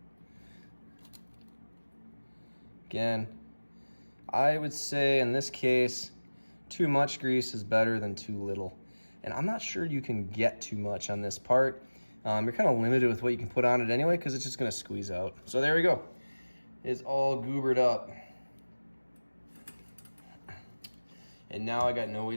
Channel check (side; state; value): both; inverted; correlation -1.00